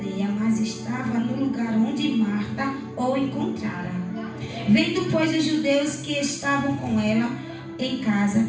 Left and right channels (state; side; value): identical; both; correlation 1.00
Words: mas estava no lugar onde Marta o encontrara. Vendo, pois, os judeus que estavam com ela em casa